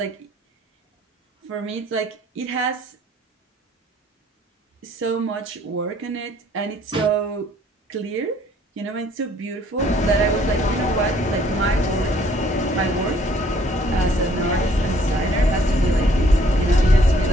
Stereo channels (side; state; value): both; normal; correlation 0.61